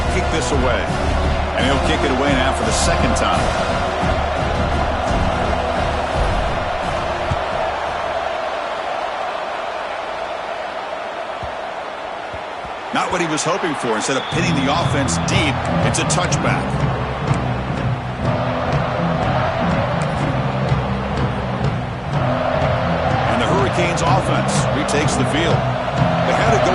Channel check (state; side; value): identical; both; correlation 1.00